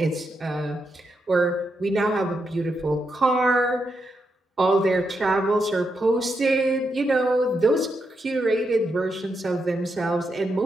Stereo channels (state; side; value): normal; both; correlation 0.83